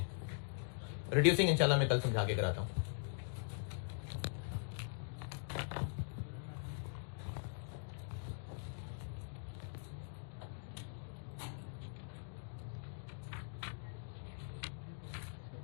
रिड्यूसिंग इंशाल्लाह मैं कल समझा के कराता हूं।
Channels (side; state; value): right; silent; digital silence